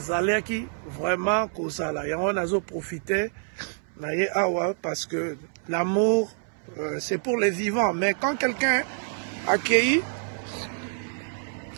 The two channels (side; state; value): left; silent; 60 dB below the other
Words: vraiment kozala yango nazo profiter naye awa parce que l'amour c'est pour les vivants, mais quand quelqu'un accueilli